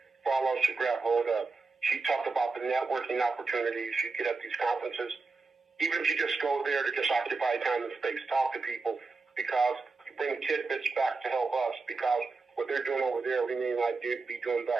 for all of us to grab hold of. She talked about the networking opportunities you get at these conferences. Even if you just go there to just occupy time and space, talk to people, because you bring tidbits back to help us, because what they're doing over there, we may not be doing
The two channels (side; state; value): left; quieter; 4.1 dB